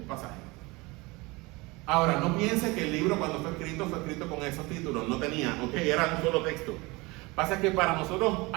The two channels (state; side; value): quieter; left; 24.1 dB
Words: pasaje. Ahora, no piense que el libro cuando fue escrito con esos títulos. No tenía, ok, era un solo texto. Pasa que para nosotros